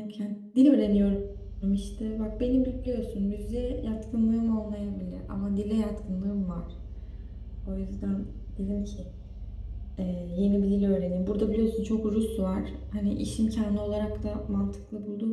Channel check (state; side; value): identical; both; correlation 1.00